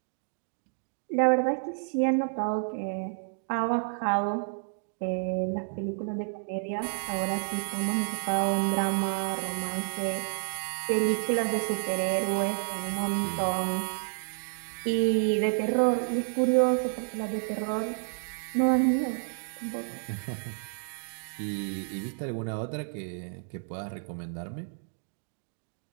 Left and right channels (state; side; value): silent; left; digital silence